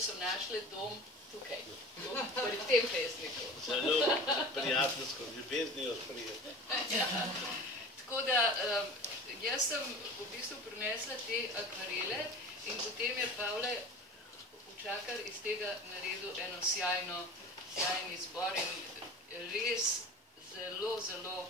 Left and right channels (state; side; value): normal; both; correlation 0.37